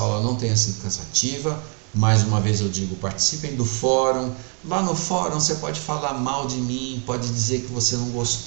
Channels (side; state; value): left; quieter; 39.3 dB